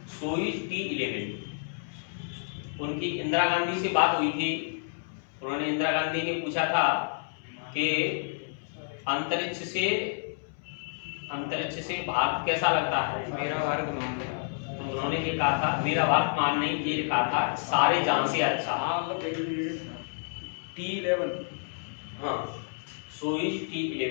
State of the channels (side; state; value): right; silent; 58 dB below the other